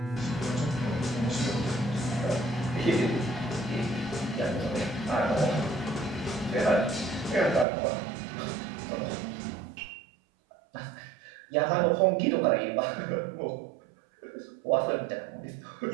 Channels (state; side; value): drops out; left; at 7.7 s